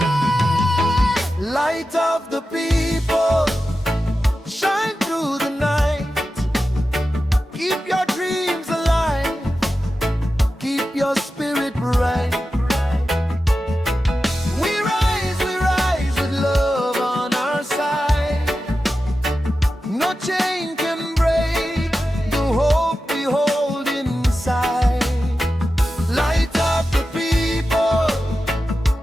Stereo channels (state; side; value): normal; both; correlation 0.92